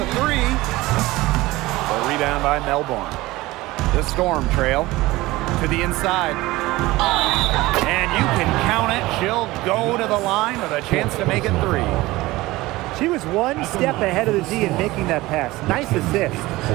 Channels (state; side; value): quieter; left; 19.3 dB